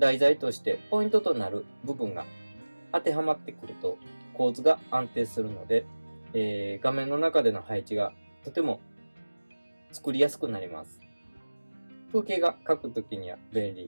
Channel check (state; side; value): inverted; both; correlation -1.00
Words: 材としてポイントとなる部分が当てはまってくると構図が安定するので、画面の中での配置がとても作りやすくなります。風景が描くときには便利